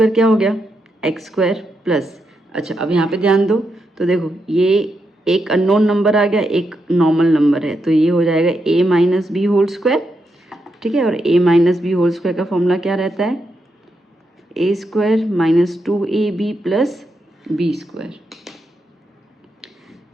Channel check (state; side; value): normal; both; correlation 0.83